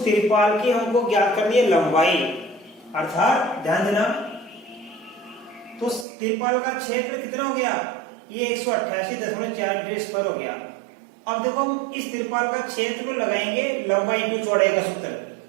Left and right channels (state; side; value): drops out; left; at 6.1 s